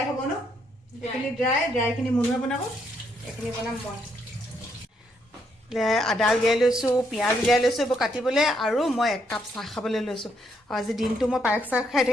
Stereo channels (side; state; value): both; normal; correlation 0.74